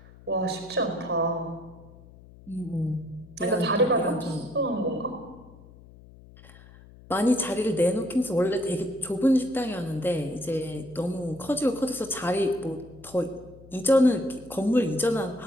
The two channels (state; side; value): noise; left; hum, 21 dB below the sound